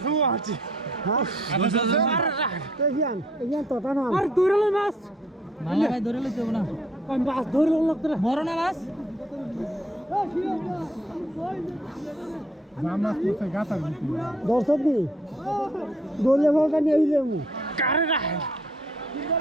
আছে মাছ আছে হ্যাঁ এগিয়ান তো না আর দৌড়ালে মাছ ভালো ভাই দৌড়ালে যাব না মাছ ধরলো লাগতো বড় না মাছ মাছ করতে গাতার দর্শক দি দোলে বলটা নিয়ে যাবো কারে না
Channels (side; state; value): both; normal; correlation 0.63